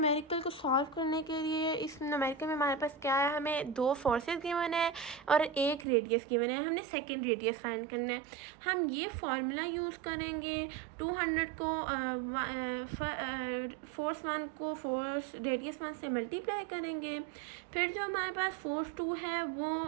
को सॉल्व करने के लिए इस न्यूमेरिकल में हमारे पास क्या है, हमें दो फोर्सेस गिवन है और एक रेडियस गिवन है। हमने सेकंड रेडियस फाइंड करना है। हम ये फार्मूला यूज़ करेंगे। 200 को फोर्स 1 को फोर्स रेडियस 1 से मल्टीप्लाई करेंगे, फिर जो हमारे पास फोर्स 2 है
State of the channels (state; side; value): drops out; left; at 5.9 s